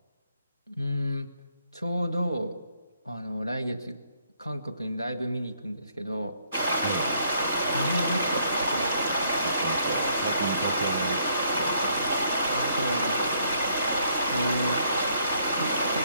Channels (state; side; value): inverted; both; correlation -0.67